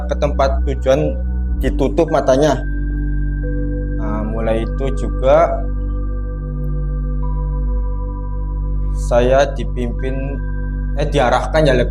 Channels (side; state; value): both; identical; correlation 1.00